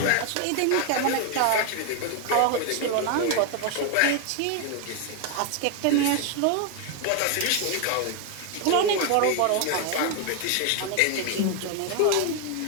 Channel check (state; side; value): different; both; correlation 0.01